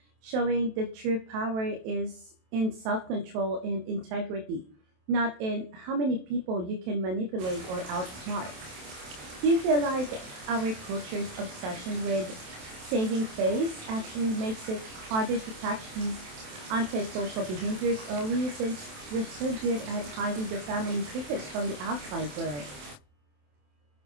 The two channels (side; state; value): left; late; 27 ms